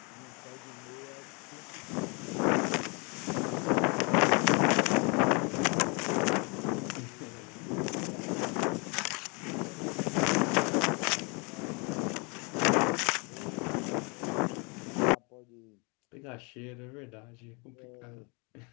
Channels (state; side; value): quieter; right; 31.9 dB